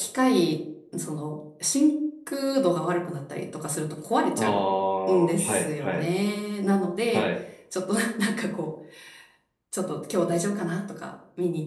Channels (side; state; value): both; identical; correlation 1.00